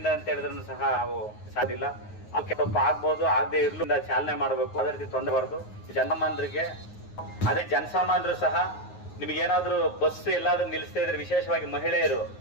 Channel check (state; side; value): late; right; 9.5 ms